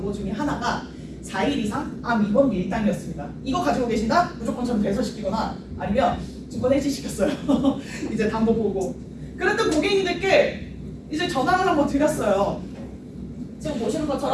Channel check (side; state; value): both; identical; correlation 1.00